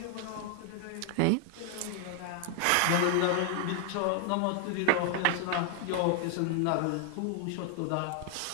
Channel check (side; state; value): both; different; correlation 0.00